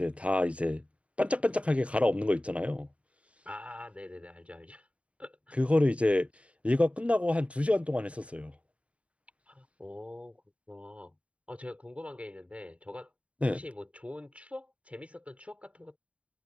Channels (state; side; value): late; left; 0.063 ms